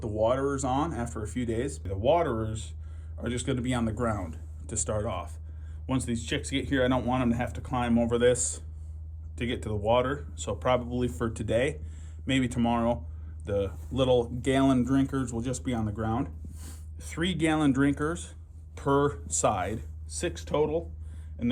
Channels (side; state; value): both; identical; correlation 1.00